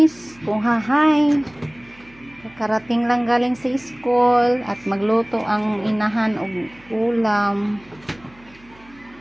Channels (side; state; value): right; noise; hum, 27 dB below the sound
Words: kung hahay. Karating lang galing sa school at magluto ang inahan og ulam.